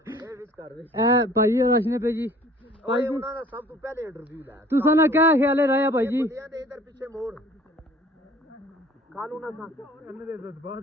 ए भाई और रशने पे जी भाई जी सब तो पहले इंटरव्यू ला तुसा ना क्या ख्याल है राया भाई जी इधर पीछे मोड़ कालू ना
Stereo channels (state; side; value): normal; both; correlation 0.50